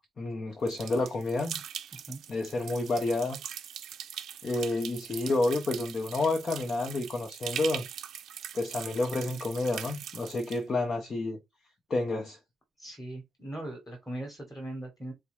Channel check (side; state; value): both; normal; correlation 0.85